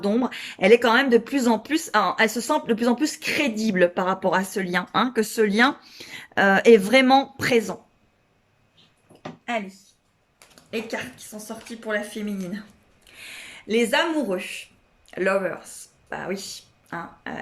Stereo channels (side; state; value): both; identical; correlation 1.00